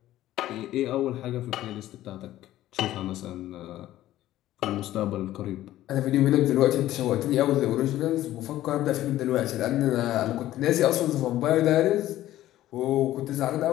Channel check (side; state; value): right; quieter; 14.2 dB